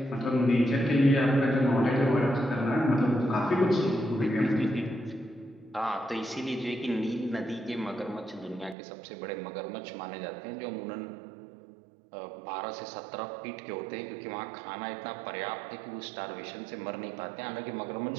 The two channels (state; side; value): drops out; left; at 8.8 s